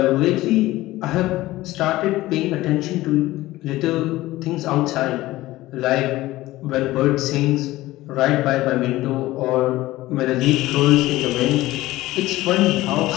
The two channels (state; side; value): quieter; right; 17.3 dB